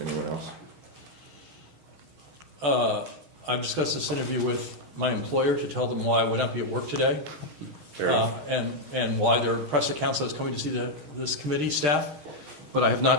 anyone else? I've discussed this interview with my employer to tell them why I would not be at work today, and why there are press accounts that I was coming to see this committee staff, but I have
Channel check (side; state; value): left; late; 6.4 ms